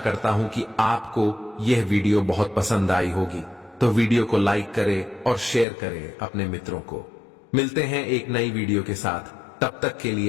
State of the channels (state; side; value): drops out; right; at 5.7 s